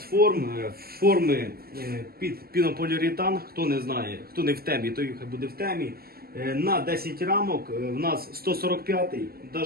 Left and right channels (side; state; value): left; late; 0.44 ms